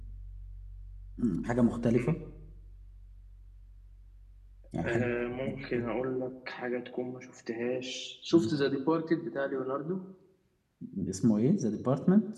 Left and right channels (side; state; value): both; identical; correlation 1.00